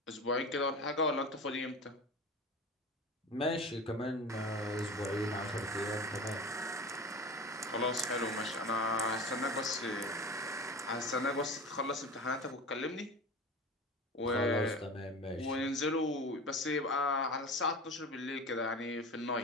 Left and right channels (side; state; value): both; normal; correlation 0.32